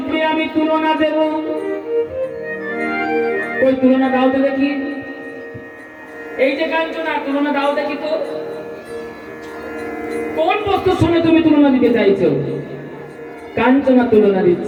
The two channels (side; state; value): both; identical; correlation 1.00